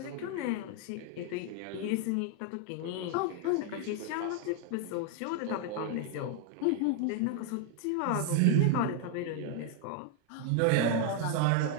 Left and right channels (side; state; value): both; different; correlation 0.00